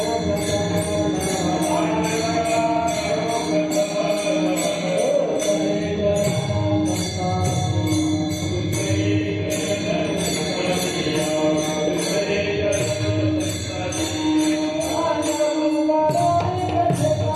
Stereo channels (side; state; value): both; identical; correlation 1.00